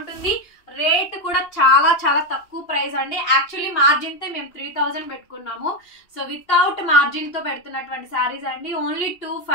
రేట్ కూడా చాలా చాలా తక్కువ ప్రైస్ అండి. యాక్చువల్లీ మార్జిన్ తో మేము 3000 పెట్టుకున్నాము. సో వితౌట్ మార్జిన్ తో పెడుతున్నటువంటి శారీస్ అండి. Only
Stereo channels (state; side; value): late; right; 2.9 ms